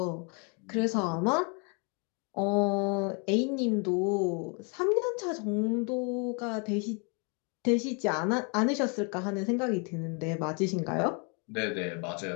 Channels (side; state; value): right; quieter; 35.3 dB